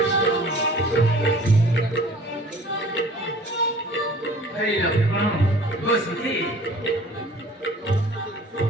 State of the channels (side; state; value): both; normal; correlation 0.48